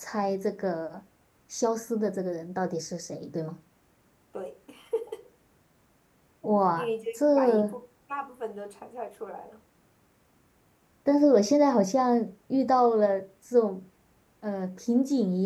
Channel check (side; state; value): both; identical; correlation 1.00